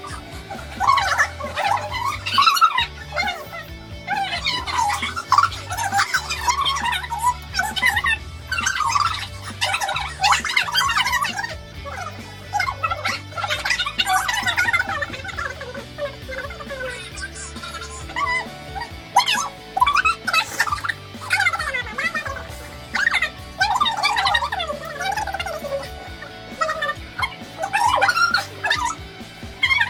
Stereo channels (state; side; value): identical; both; correlation 1.00